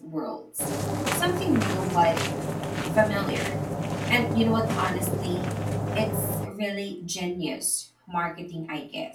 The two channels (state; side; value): identical; both; correlation 1.00